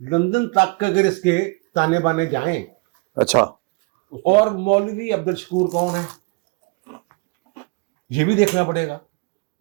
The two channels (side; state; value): left; quieter; 28.3 dB